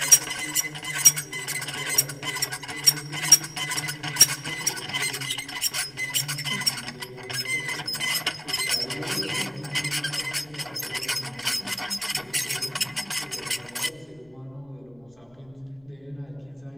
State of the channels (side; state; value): left; noise; rumble, 30 dB below the sound